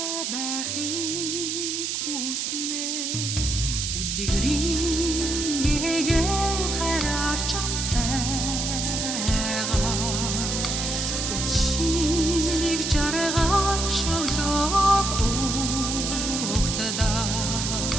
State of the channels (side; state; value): right; noise; hiss, 2 dB below the sound